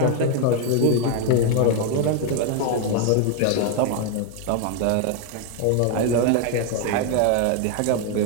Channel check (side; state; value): both; different; correlation 0.01